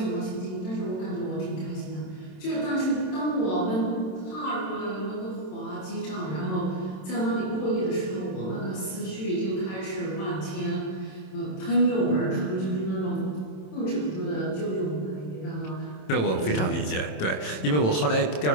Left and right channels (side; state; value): right; late; 27 ms